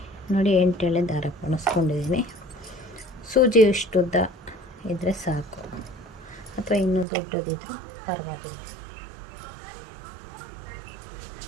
ನೋಡಿ. 8 ಎಳೆ ದಾರ ಪೋಣಿಸ್ಕೊಂಡಿದ್ದೀನಿ. ಸೂಜಿ ಇಷ್ಟುದ್ದ ಇದ್ದರೆ ಸಾಕು, ಅಥವಾ ಇನ್ನೂ ದೊಡ್ಡದಿದ್ರೂ ಪರವಾಗಿಲ್ಲ.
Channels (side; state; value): left; drops out; at 7.1 s